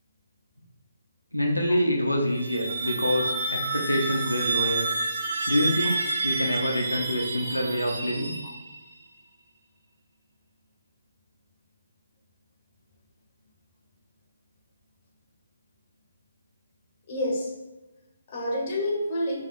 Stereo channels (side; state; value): both; inverted; correlation -0.79